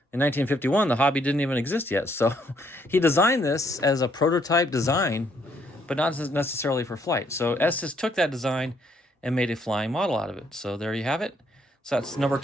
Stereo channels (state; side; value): normal; both; correlation 0.69